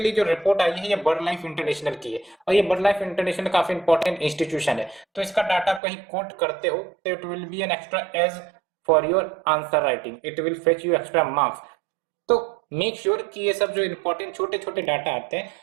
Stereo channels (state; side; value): drops out; left; at 5.8 s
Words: जो रिपोर्ट आई है ये बर्ड लाइफ इंटरनेशनल की है और ये बर्ड लाइफ इंटरनेशनल काफी इंपॉर्टेंट इंस्टीट्यूशन है। तो इसका डाटा कहीं कोट करते हो तो it will be an extra edge for your answer writing, it will fetch you extra marks. तो मेक श्योर कि ये सब जो इंपॉर्टेंट छोटे छोटे डाटा आते हैं